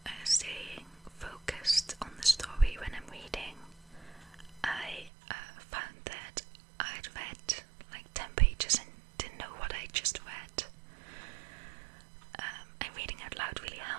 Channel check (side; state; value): left; drops out; at 5.1 s